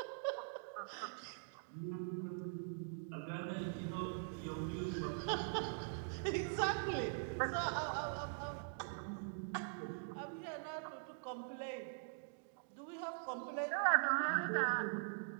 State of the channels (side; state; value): left; silent; digital silence